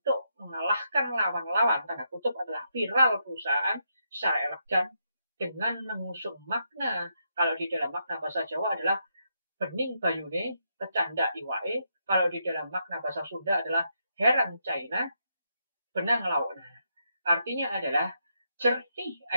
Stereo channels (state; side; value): inverted; both; correlation -0.80